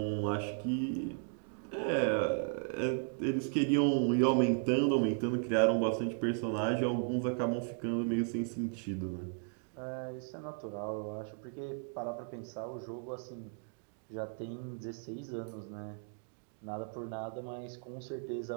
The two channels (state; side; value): silent; left; 54 dB below the other